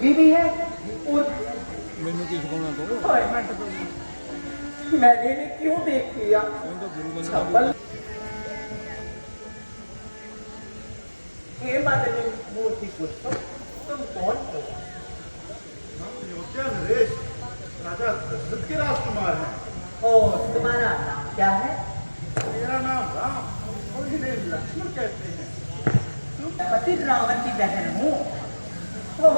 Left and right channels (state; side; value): inverted; both; correlation -1.00